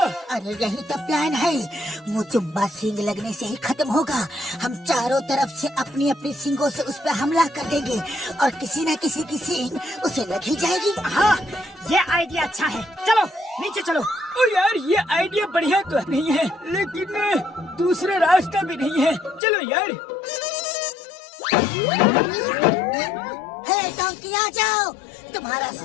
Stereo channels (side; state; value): right; drops out; at 19.4 s